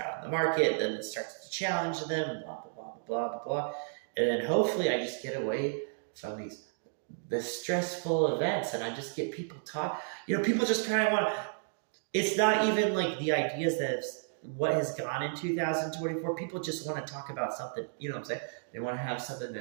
in the market, then it starts to challenge them, blah, blah, blah, blah, blah, blah. And then hopefully I just get away from the stressful events, and I just get people talk. People just kind of want to, it's not even like the ideas that what has gone in 2024. People just want to talk about something, you know what I'm saying? They want to have something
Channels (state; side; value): silent; left; digital silence